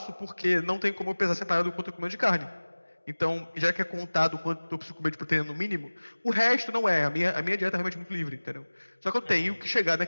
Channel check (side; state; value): both; inverted; correlation -1.00